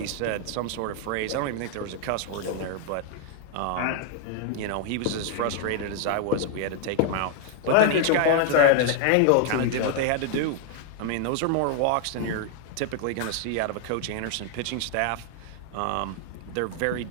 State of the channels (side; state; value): both; different; correlation 0.00